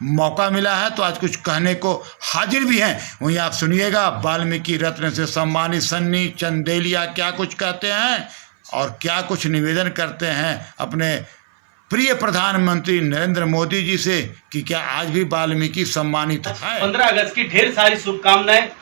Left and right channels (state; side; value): silent; left; 61 dB below the other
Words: मौका मिला है, तो आज कुछ कहने को हाजिर भी हैं। वहीं आप सुनिएगा वाल्मीकि रत्न से सम्मानित सन्नी चंदेलिया क्या कुछ कहते हैं और क्या कुछ निवेदन करते हैं अपने प्रिय प्रधानमंत्री नरेंद्र मोदी जी से कि क्या आज भी वाल्मीकि सम्मानित है। 15 अगस्त की ढेर सारी शुभकामनाएं।